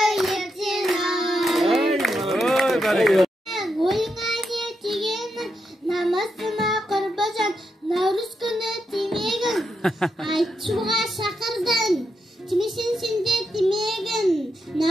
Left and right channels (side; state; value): both; normal; correlation 0.84